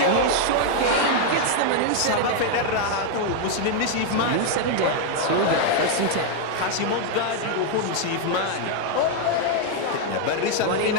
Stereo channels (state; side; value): different; both; correlation 0.00